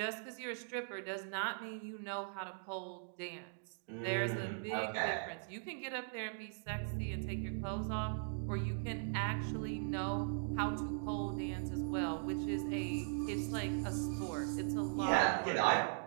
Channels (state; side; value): silent; left; digital silence